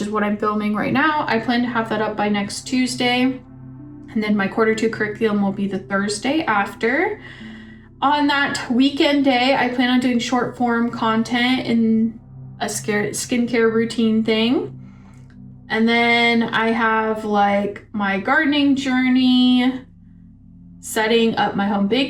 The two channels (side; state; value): both; identical; correlation 1.00